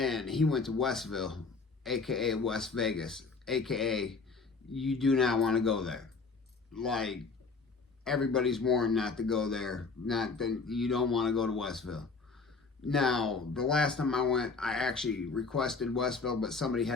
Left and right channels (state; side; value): quieter; right; 4.4 dB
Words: he went to Westville, aka West Vegas, aka you do not want to go there. Like, everybody's warned not to go there. Not that you don't want to go to Westville. Now, the last time I went, I actually requested Westville, but somebody